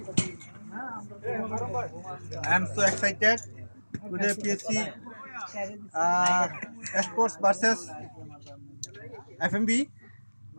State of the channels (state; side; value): inverted; both; correlation -1.00